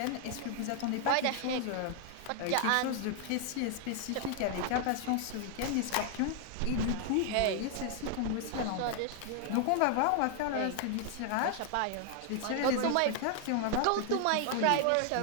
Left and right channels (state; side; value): different; both; correlation 0.00